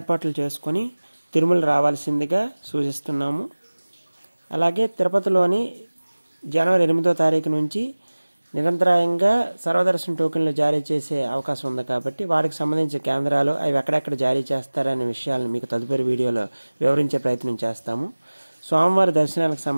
చేసుకొని తిరుమల రావాల్సిందిగా సూచిస్తున్నాము. అలాగే తిరుపతిలోని జనవరి 8వ తారీఖు నుంచి నిరంతరాయంగా సర్వదర్శన టోకెన్లు జారీ చేసే అవకాశం ఉంది కాబట్టి వాటికి సంబంధించిన కేంద్రాలు అవి ఎక్కడెక్కడ జారీ చేస్తారనే విషయాలను మీకు తదుపరి వీడియోలో వివరించే ప్రయత్నం చేస్తాము. స్వామివారి దర్శనాలకు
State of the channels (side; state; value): both; inverted; correlation -1.00